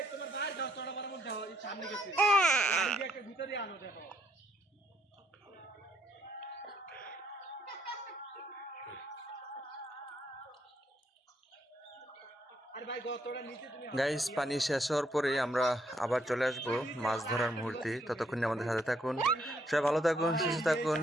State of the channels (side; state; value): both; normal; correlation 0.72